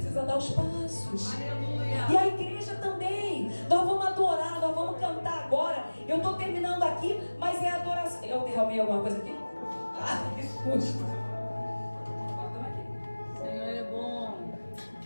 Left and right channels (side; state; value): both; inverted; correlation -1.00